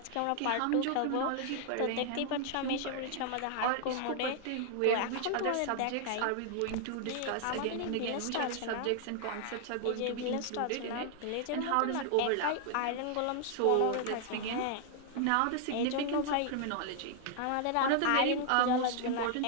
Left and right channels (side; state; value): both; different; correlation 0.00